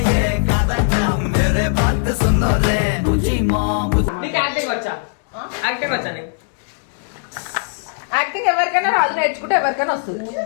యాక్టింగ్ ఎవరికైనా రాజు నేర్చుకుంటే ఎవరికైనా వస్తుంది.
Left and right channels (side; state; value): right; silent; digital silence